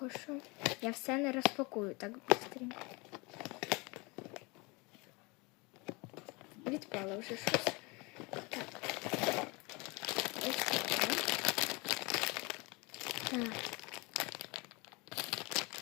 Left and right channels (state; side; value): quieter; right; 27.2 dB